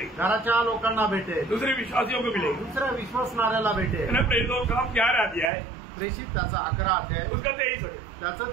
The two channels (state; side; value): drops out; left; at 5.5 s